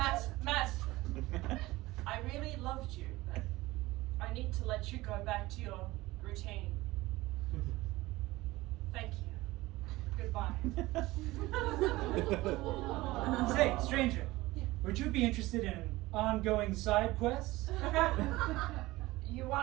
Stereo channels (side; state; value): left; quieter; 19.2 dB